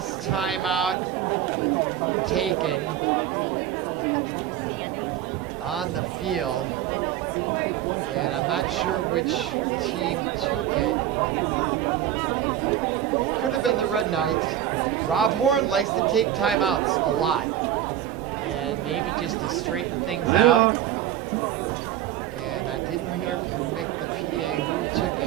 timeout taken. on the field. And I'm not sure which team took it. It could have been the Red Knights. Rob Horn likes to take timeouts a lot. And maybe just to straighten things out. And I didn't hear from Mick, the PA, who took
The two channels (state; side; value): quieter; left; 11.6 dB